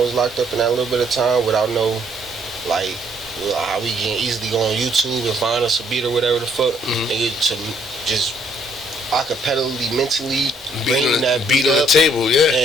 was locked up in that little bit of time without no, like how we can easily go on YouTube and find us a beat or whatever the fuck, nigga, to just acapellally, mentally bring that beat on the up table,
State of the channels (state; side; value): normal; both; correlation 0.67